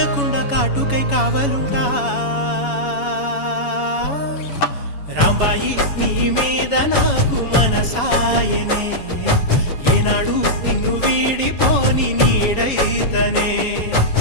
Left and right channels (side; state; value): right; late; 7.0 ms